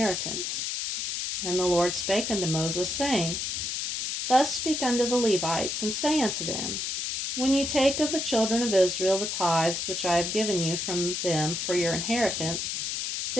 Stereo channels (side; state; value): left; noise; hiss, 2 dB below the sound